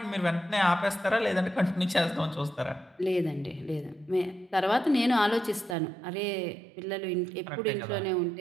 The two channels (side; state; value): left; drops out; at 5.8 s